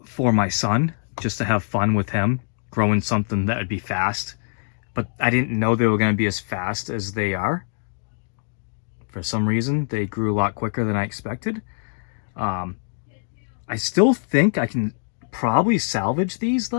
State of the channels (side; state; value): right; silent; digital silence